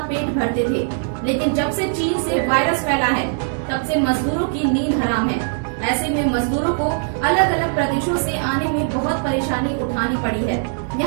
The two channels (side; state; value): left; silent; digital silence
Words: पेट भरते थे, लेकिन जब से चीन से वायरस फैला है तब से मजदूरों की नींद हराम है। ऐसे में मजदूरों को अलग अलग प्रदेशों से आने में बहुत परेशानी उठानी पड़ी है।